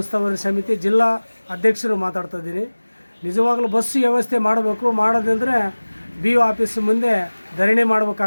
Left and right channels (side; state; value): both; inverted; correlation -1.00